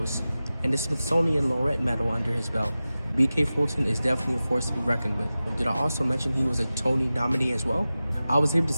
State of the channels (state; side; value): inverted; both; correlation -0.95